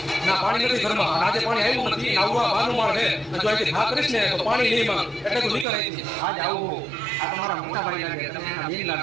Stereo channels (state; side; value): drops out; left; at 5.7 s